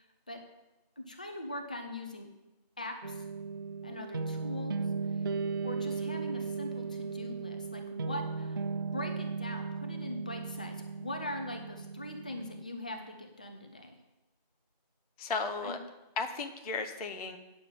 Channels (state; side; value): inverted; both; correlation -0.53